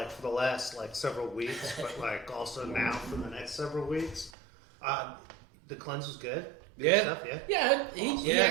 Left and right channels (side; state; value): left; drops out; at 4.3 s